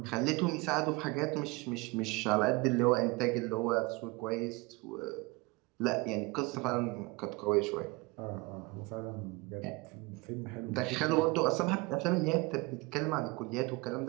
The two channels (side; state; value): left; quieter; 24.4 dB